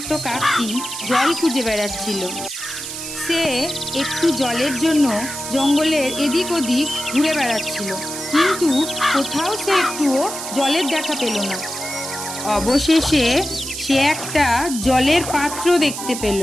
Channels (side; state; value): right; noise; hiss, 7 dB below the sound